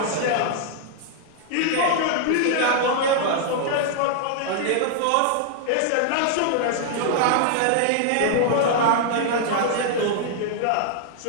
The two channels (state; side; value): different; both; correlation 0.00